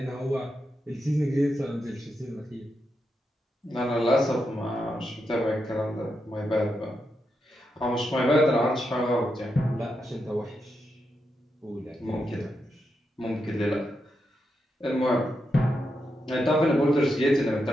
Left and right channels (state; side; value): normal; both; correlation 0.85